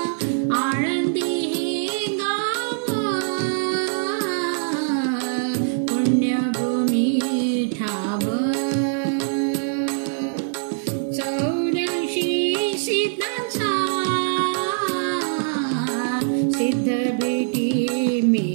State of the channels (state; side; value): silent; left; 58 dB below the other